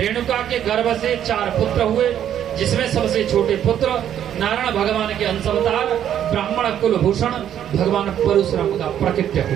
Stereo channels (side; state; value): left; quieter; 10.2 dB